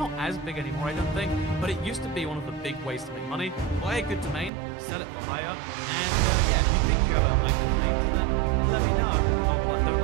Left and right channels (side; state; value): left; drops out; at 4.5 s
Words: as big anymore, I don't think, but it used to be one of the big ways to make money. Buy a good domain, sell it for higher, and yeah, if you think you have a like domain, then let me know. Or don't